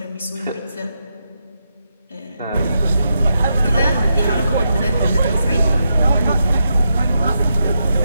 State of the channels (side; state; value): both; inverted; correlation -0.83